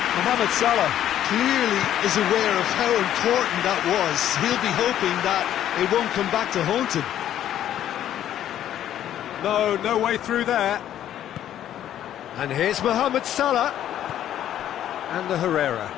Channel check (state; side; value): quieter; right; 11.3 dB